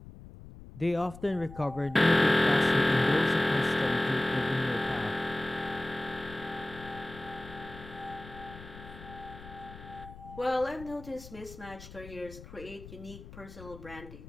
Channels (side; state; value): left; noise; rumble, 16 dB below the sound